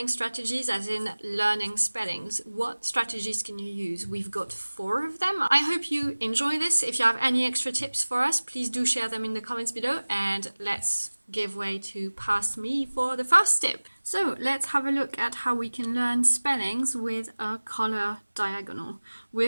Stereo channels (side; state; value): both; inverted; correlation -1.00